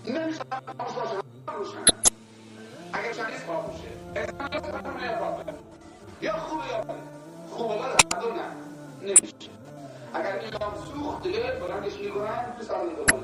نمیشه خاموش باشه روشنه. اگر چندیز خاموشه انسان یا سرمونه یا باطل، یا خوبه یا بده. خوبه بده هر نه نمیشه. اگر ایران سوخت دیگه بلندش میکنن تو سر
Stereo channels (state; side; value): identical; both; correlation 1.00